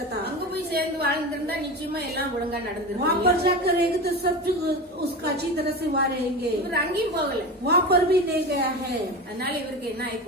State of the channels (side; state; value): both; normal; correlation 0.26